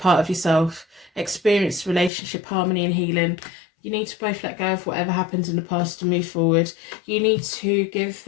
of yourself, experience relationship harmony and healing. You need to both let go of whatever happened in the past to move forward. You need to give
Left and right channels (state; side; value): drops out; right; at 2.1 s